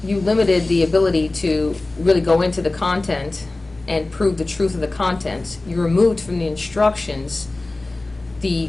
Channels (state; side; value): quieter; right; 3.0 dB